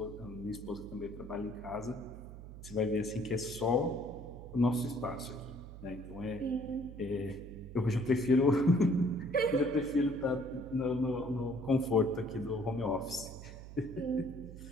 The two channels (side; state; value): right; noise; hum, 13 dB below the sound